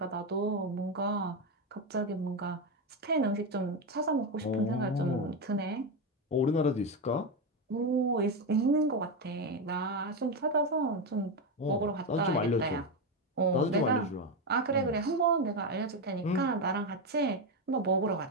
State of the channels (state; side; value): normal; both; correlation 0.11